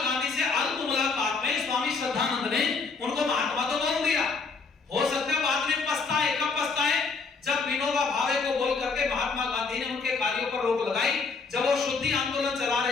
से अल्प मुलाकात में स्वामी श्रद्धानंद ने उनको महात्मा तो बोल दिया। हो सकता है बाद में पछताए। कब पछताए? जब विनोबा भावे को बोल करके महात्मा गांधी ने उनके कार्यों पर रोक लगाई। जब वो शुद्धि आंदोलन चला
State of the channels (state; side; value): quieter; right; 4.6 dB